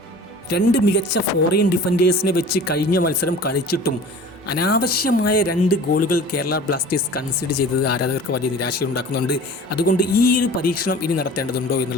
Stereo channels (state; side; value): normal; both; correlation 0.42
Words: 2 മികച്ച ഫോറിൻ ഡിഫൻഡേഴ്സിനെ വെച്ച് കഴിഞ്ഞ മത്സരം കളിച്ചിട്ടും അനാവശ്യമായ 2 ഗോളുകൾ കേരള ബ്ലാസ്റ്റേഴ്സ് കൺസിഡർ ചെയ്തത് ആരാധകർക്ക് വലിയ നിരാശയുണ്ടാക്കുന്നുണ്ട്. അതുകൊണ്ട് ഈ ഒരു പരീക്ഷണം ഇനി നടത്തേണ്ടതുണ്ടോ